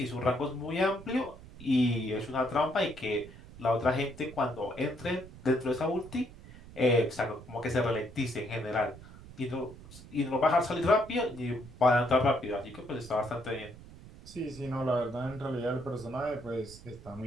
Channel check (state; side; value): noise; right; rumble, 17 dB below the sound